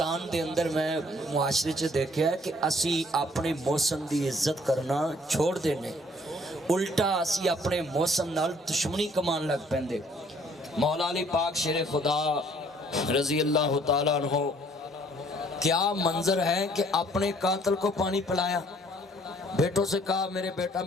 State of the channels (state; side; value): normal; both; correlation 0.60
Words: دے اندر میں معاشرے چ دیکھا ہے کہ اسی اپنے موسم دی عزت کرنا چھوڑ دینے، الٹا اسی اپنے موسم نال دشمنی کمان لگ پیندے۔ مولا علی پاک شیر خدا رضی اللہ تعالیٰ عنہ کیا منظر ہے کہ اپنے قاتل کو پانی پلایا، بیٹوں سے کہا میرے بیٹا